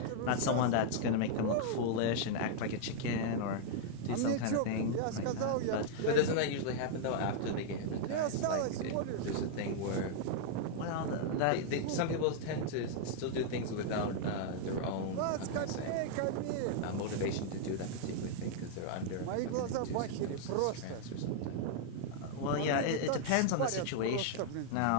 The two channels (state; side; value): different; both; correlation -0.01